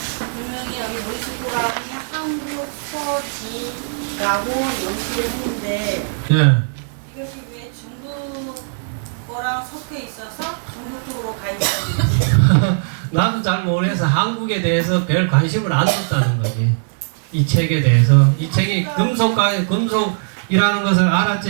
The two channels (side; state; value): left; silent; digital silence